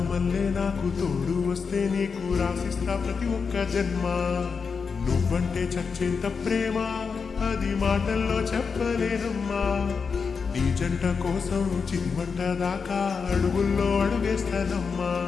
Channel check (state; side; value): quieter; right; 5.5 dB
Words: నాకు తోడు వస్తే నీకు రాసిస్తా ప్రతి ఒక్క జన్మ. నువ్వంటే చచ్చేంత ప్రేమ అది మాటల్లో చెప్పలేనమ్మా. నీ జంట కోసం చిమ్మంట దాకా అడుగుల్లో అడుగేస్తానమ్మా.